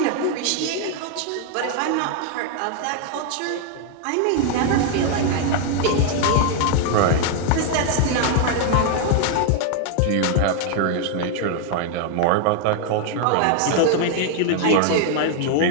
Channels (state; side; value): different; both; correlation 0.00